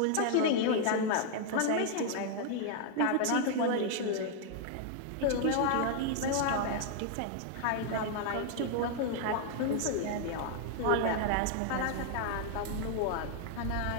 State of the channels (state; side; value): different; both; correlation 0.00